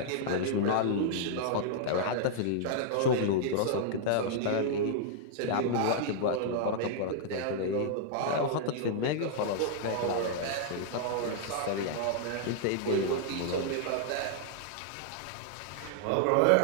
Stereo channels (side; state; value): both; different; correlation -0.01